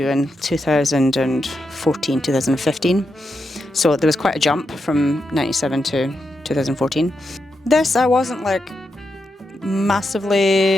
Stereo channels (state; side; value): normal; both; correlation 0.85